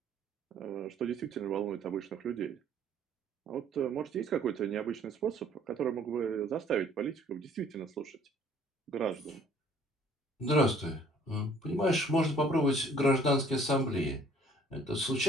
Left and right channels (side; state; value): both; normal; correlation 0.57